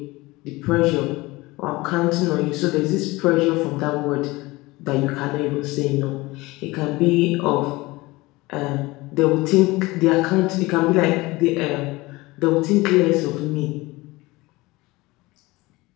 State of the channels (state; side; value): quieter; right; 21.2 dB